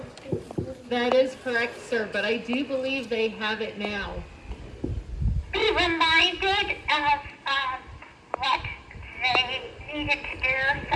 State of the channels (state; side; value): identical; both; correlation 1.00